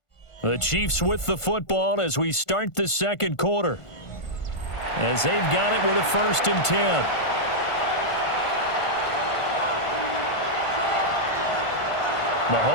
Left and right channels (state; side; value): late; right; 1.5 ms